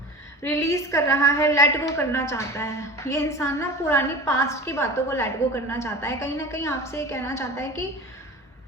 रिलीज कर रहा है, लेट गो करना चाहता है ये इंसान ना, पुरानी पास्ट की बातों को लेट गो करना चाहता है। कहीं ना कहीं आपसे ये कहना चाहता है कि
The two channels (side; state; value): both; normal; correlation 0.33